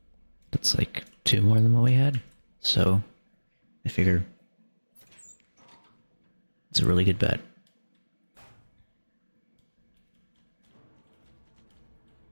That's like 2 more than what we had, so I figure it's a really good bet.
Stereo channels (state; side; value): inverted; both; correlation -1.00